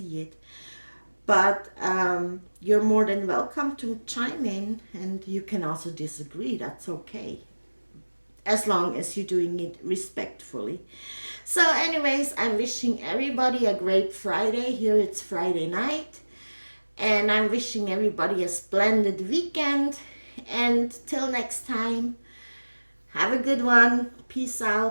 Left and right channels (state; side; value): inverted; both; correlation -1.00